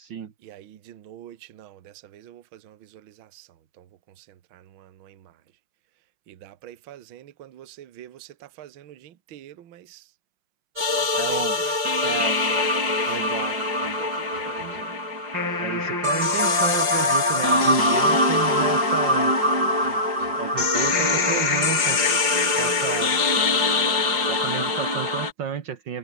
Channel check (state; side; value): late; left; 5.6 ms